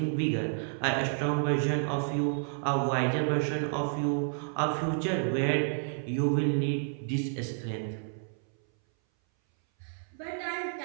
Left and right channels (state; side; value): silent; left; 58 dB below the other